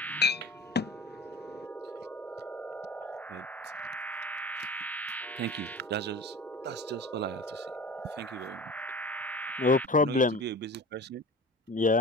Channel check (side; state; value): both; normal; correlation 0.36